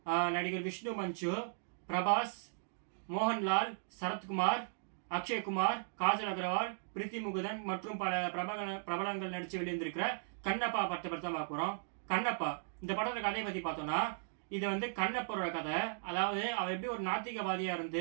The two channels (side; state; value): left; silent; digital silence